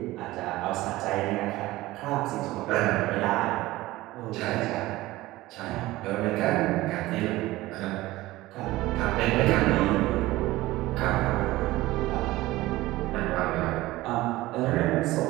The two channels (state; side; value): quieter; left; 18.0 dB